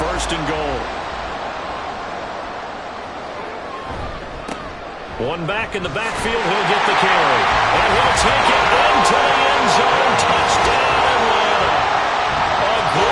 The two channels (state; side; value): identical; both; correlation 1.00